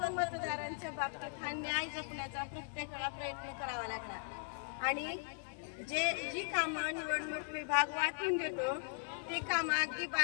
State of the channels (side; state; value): right; silent; digital silence